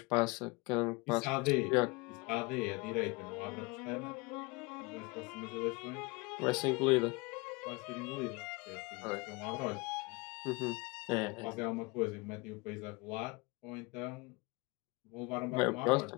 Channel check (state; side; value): quieter; right; 25.8 dB